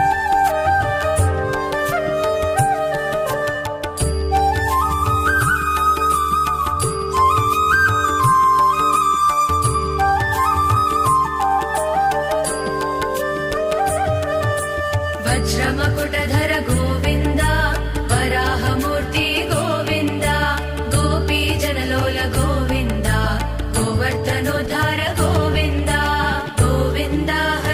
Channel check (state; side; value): identical; both; correlation 1.00